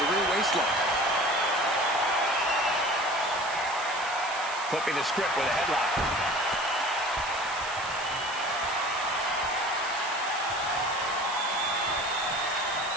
rear waistlock. Flipping the script with a headlock.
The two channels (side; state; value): right; noise; hiss, 12 dB below the sound